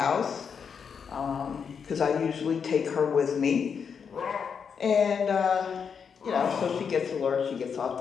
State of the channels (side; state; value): right; quieter; 6.6 dB